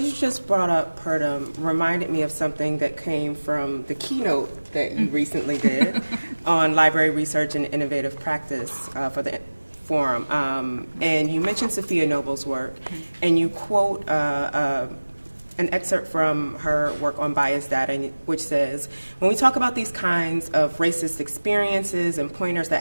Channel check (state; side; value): inverted; both; correlation -1.00